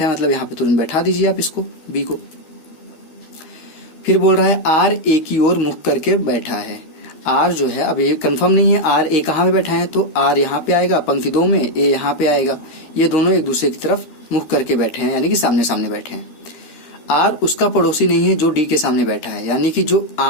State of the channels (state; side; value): late; right; 13 ms